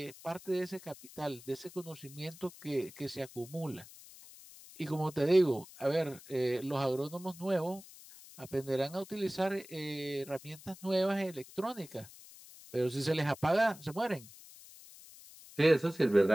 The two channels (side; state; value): left; noise; hiss, 19 dB below the sound